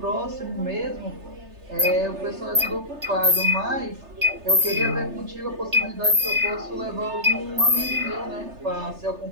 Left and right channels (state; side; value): late; left; 3.3 ms